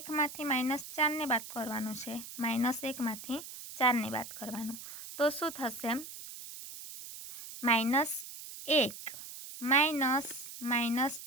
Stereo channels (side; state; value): right; noise; hiss, 12 dB below the sound